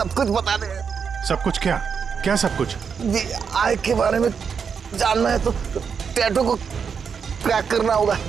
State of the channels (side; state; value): left; quieter; 6.4 dB